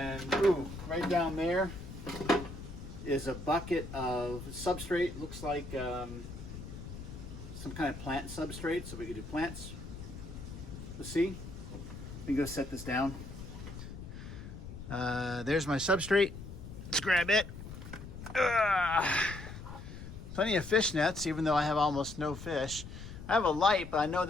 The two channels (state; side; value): noise; left; rumble, 11 dB below the sound